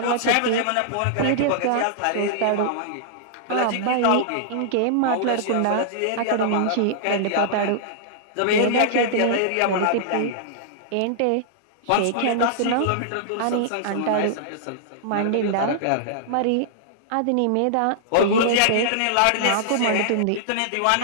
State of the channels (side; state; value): both; different; correlation -0.02